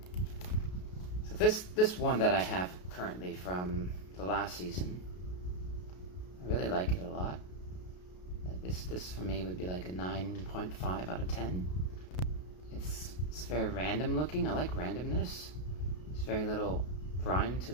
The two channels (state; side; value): late; right; 33 ms